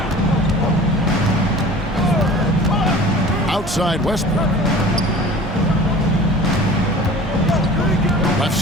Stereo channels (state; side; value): normal; both; correlation 0.43